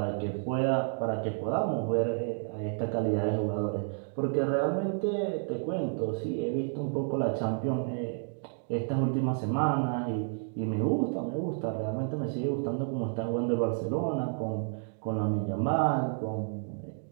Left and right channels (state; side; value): silent; left; 57 dB below the other